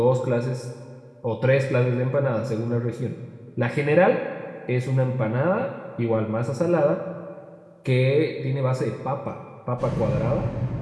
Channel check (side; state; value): both; identical; correlation 1.00